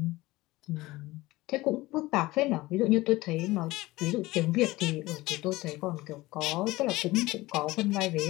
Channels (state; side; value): quieter; right; 19.4 dB